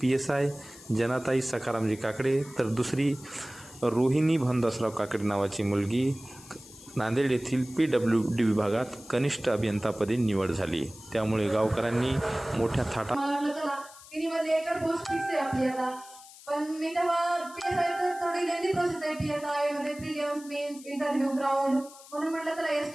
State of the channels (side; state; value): left; noise; hiss, 19 dB below the sound